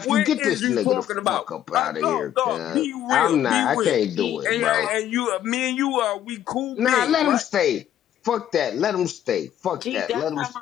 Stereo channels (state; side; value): quieter; right; 11.1 dB